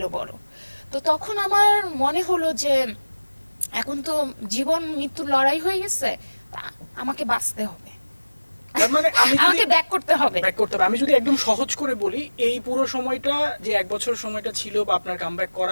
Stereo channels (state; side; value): inverted; both; correlation -1.00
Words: বড়। তো তখন আমার মনে হলো যে এখন তো জীবন মৃত্যুর লড়াই হয়ে গেছে, আমাকে বাঁচতে হবে, তার মানে আমাকে ব্যাক করতে হবে। আমি যদি একদম সহজ করে বলি, এই পুরো সময়টা যে 1 বছর সময়টা ছিল বা আপনার কামব্যাক